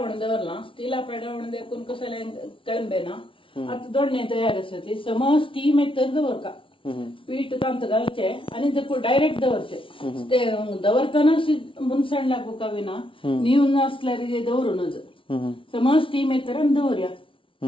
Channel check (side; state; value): right; late; 0.25 ms